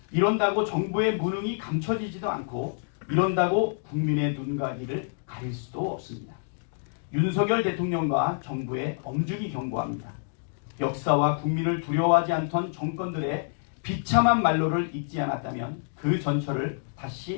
이런다고 정부의 무능이 감춰지지도 않고 이런다고 국민의 눈가기를 가릴 수도 없습니다. 윤석열 대통령과 정부에 엄중히 경고합니다. 역사와 국민을 두려워하지 않던 정권들의 비참한 말로를 잊지 않았다면 그 전철을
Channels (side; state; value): right; silent; digital silence